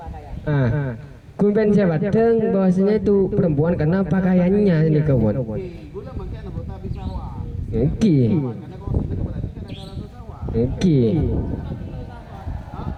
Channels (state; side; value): identical; both; correlation 1.00